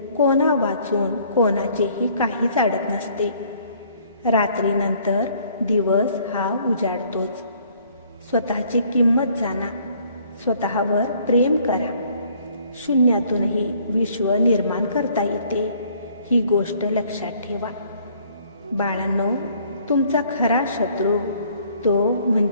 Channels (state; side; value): inverted; both; correlation -0.60